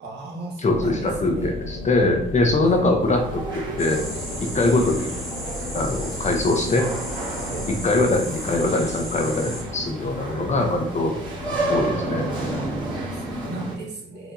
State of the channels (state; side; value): normal; both; correlation 0.49